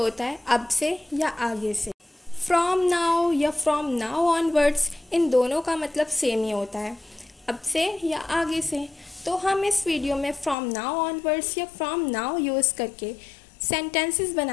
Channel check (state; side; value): drops out; right; at 10.6 s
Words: होता है अब से या आगे से। फ्रॉम नाउ या फ्रॉम नाउ ऑनवर्ड्स, इन दोनों का मतलब सेम ही होता है, अब से या आगे से। तो हम इस वीडियो में फ्रॉम नाउ ऑनवर्ड्स या फ्रॉम नाउ यूज़ करके सेंटेंसेस